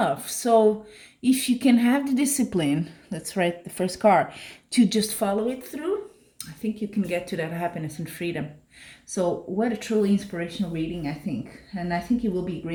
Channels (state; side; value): identical; both; correlation 1.00